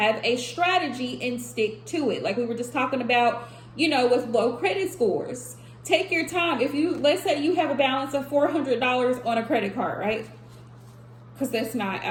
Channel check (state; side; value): identical; both; correlation 1.00